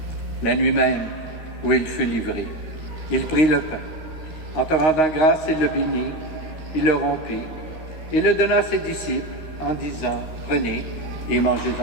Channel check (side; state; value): right; late; 13 ms